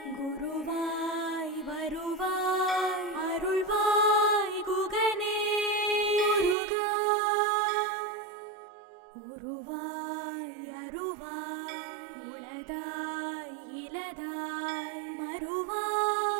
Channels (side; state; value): left; drops out; at 6.6 s